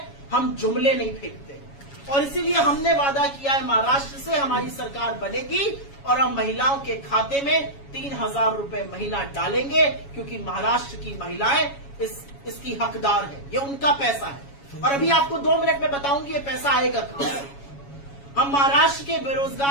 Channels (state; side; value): late; right; 7.2 ms